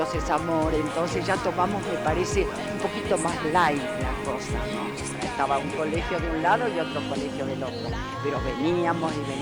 es amor, entonces ya tomamos, me parece, un poquito más light la cosa, ¿no? Estaba un colegio de un lado y otro colegio del otro, pero veníamos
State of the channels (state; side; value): identical; both; correlation 1.00